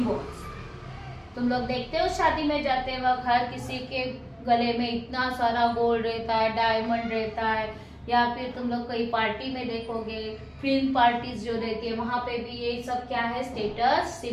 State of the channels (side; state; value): both; identical; correlation 1.00